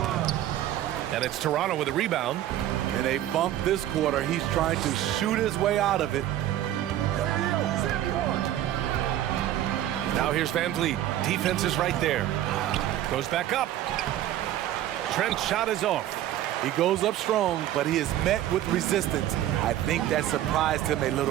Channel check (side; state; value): left; quieter; 12.7 dB